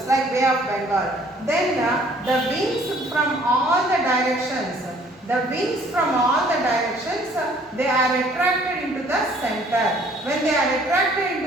like Bay of Bengal. Then the winds from all the directions, they are attracted into the center. When they are attracted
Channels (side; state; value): both; normal; correlation 0.58